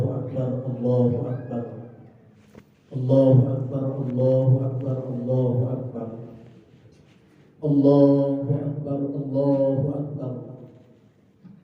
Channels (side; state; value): both; identical; correlation 1.00